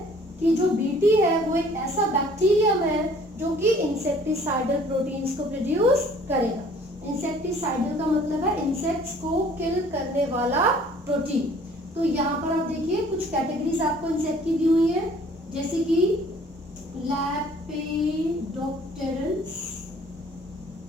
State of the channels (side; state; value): both; normal; correlation 0.54